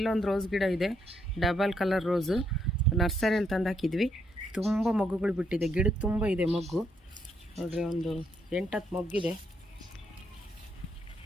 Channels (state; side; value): normal; both; correlation 0.75